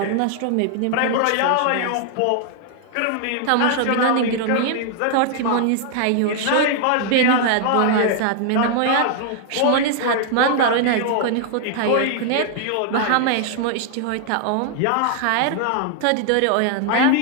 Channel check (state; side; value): different; both; correlation 0.00